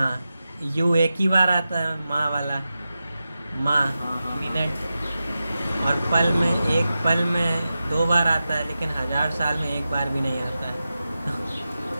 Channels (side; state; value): both; inverted; correlation -0.92